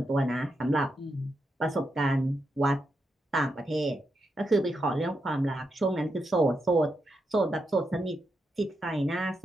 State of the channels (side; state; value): both; normal; correlation 0.84